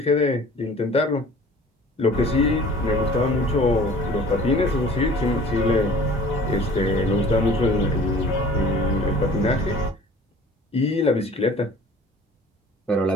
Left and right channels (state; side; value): normal; both; correlation 0.47